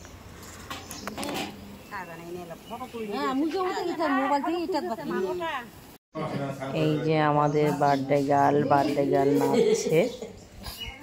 এই যে আমাদের বার্থডে গার্ল নাচছে।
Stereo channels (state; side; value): identical; both; correlation 1.00